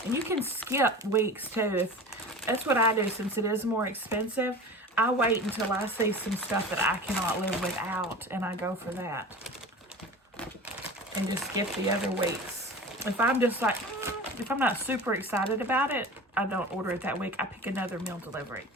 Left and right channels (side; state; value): both; normal; correlation 0.35